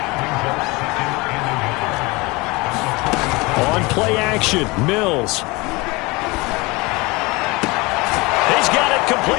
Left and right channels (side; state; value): right; quieter; 24.3 dB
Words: On play action, Mills. He's got it